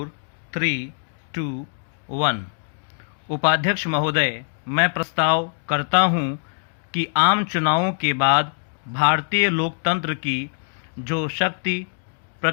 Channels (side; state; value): right; silent; 63 dB below the other